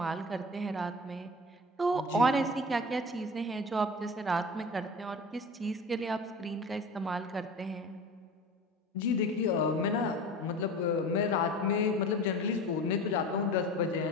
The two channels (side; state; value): both; normal; correlation 0.36